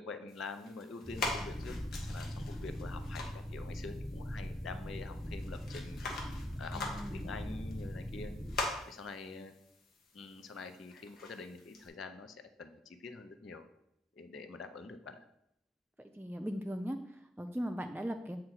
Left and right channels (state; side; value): normal; both; correlation 0.75